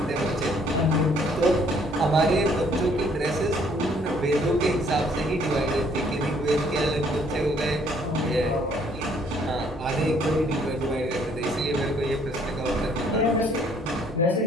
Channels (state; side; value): normal; both; correlation 0.63